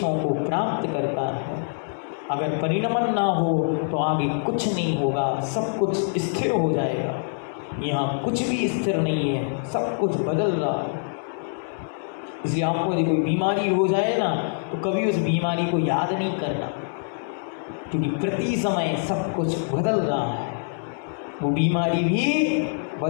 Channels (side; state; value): right; silent; 62 dB below the other